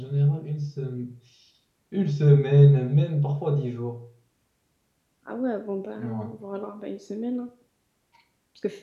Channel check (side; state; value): both; identical; correlation 1.00